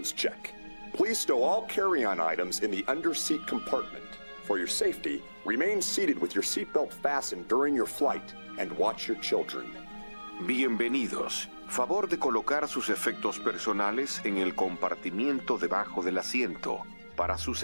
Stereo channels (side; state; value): both; inverted; correlation -1.00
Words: check. Please stow all carry-on items in the under-seat compartment. For your safety, remain seated with your seatbelt fastened during your flight and watch your children. Bienvenidos. Favor de colocar sus efectos personales en el compartimiento debajo del asiento. Para su